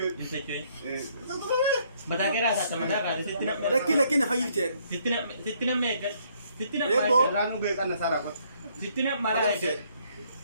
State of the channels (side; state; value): both; inverted; correlation -0.67